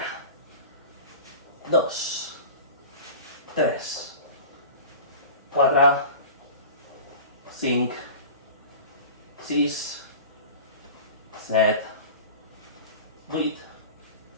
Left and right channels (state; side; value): inverted; both; correlation -0.36